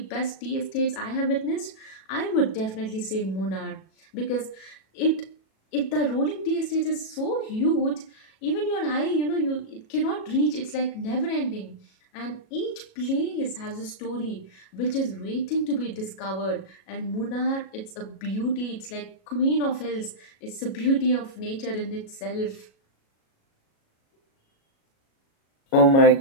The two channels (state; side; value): late; right; 37 ms